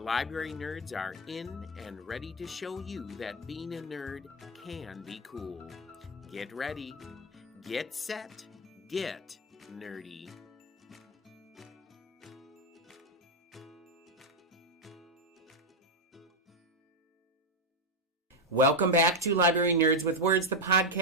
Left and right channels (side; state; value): both; normal; correlation 0.05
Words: nerds are in and ready to show you that being a nerd can be cool. Get ready, get set, get nerdy. Welcome back to Library Nerds with Words, the